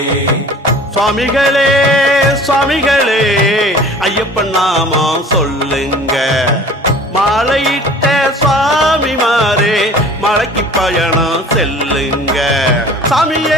சுவாமிகளே சுவாமிகளே ஐயப்பன் நாமம் சொல்லுங்க மாலையிட்ட சுவாமிமாரே மலைக்கு பயணம் செல்லுங்க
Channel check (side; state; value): both; normal; correlation 0.45